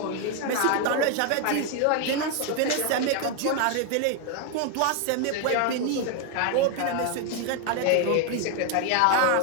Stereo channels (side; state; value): both; different; correlation 0.01